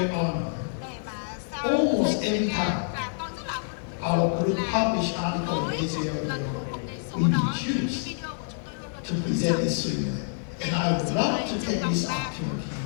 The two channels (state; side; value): silent; right; 57 dB below the other